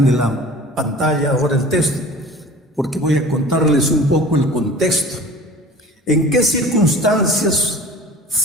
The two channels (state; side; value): normal; both; correlation 0.42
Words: de la pantalla ahora el texto, porque voy a contarles un poco el contexto. ¿En qué circunstancias